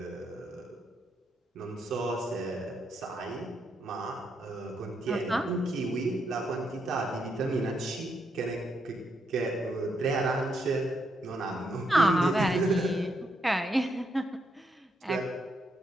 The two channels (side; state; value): both; normal; correlation 0.78